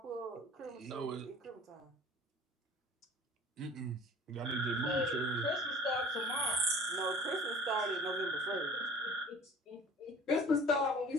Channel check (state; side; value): normal; both; correlation 0.45